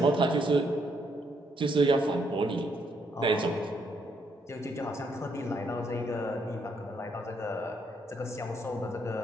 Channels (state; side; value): normal; both; correlation 0.73